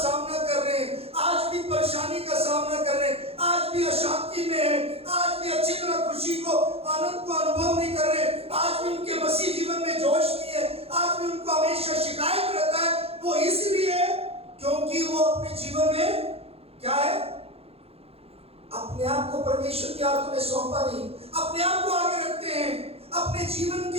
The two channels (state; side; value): late; left; 0.29 ms